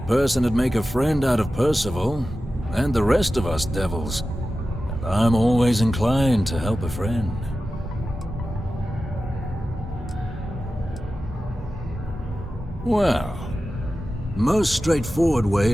person would make a friend out of Percival, and the rest of us devils. And I'm always inclined to help a friend. Well, most straightforward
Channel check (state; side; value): normal; both; correlation 0.93